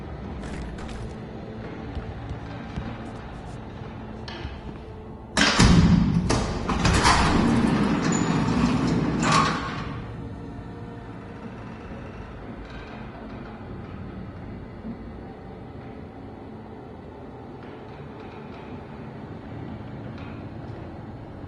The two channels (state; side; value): identical; both; correlation 1.00